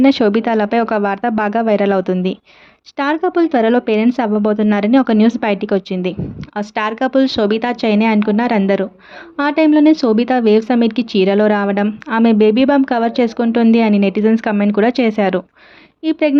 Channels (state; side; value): identical; both; correlation 1.00